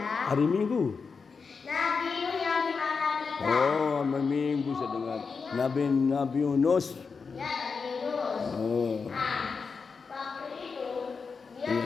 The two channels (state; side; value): quieter; right; 5.1 dB